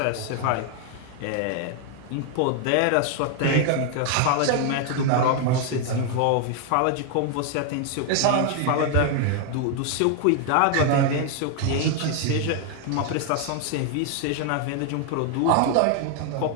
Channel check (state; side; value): different; both; correlation 0.00